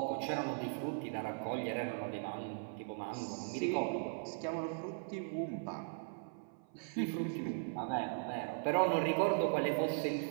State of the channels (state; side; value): silent; left; 52 dB below the other